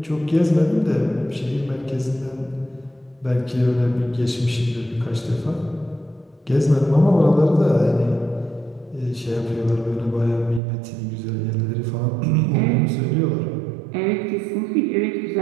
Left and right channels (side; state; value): left; drops out; at 10.6 s